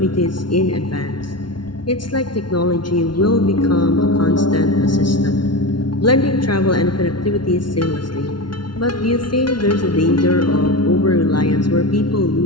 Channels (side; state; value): right; late; 0.71 ms